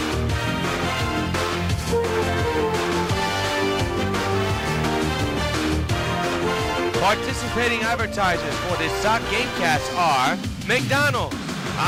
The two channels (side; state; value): both; identical; correlation 1.00